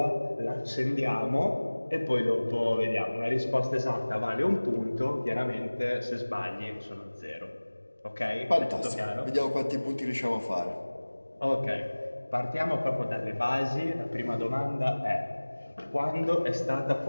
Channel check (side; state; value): both; inverted; correlation -1.00